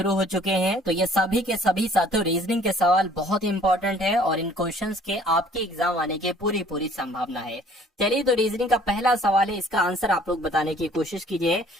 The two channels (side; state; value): both; normal; correlation 0.55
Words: हो चुके हैं। तो ये सभी के सभी साथियों रीजनिंग के सवाल बहुत इंपॉर्टेंट है और इन क्वेश्चंस के आपके एग्जाम आने की पूरी पूरी संभावना है। चलिए तो रीजनिंग का पहला सवाल है, इसका आंसर आप लोग बताने की कोशिश कीजिए।